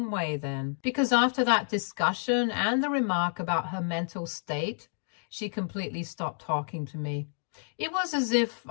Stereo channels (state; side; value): silent; right; digital silence